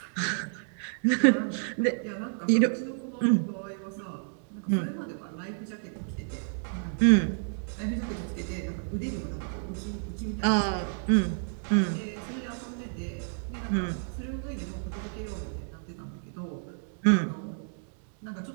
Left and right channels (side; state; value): left; silent; digital silence